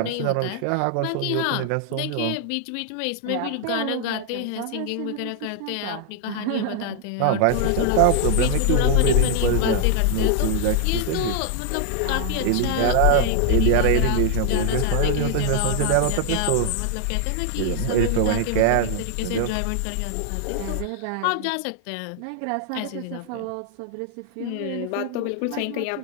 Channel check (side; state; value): both; different; correlation 0.00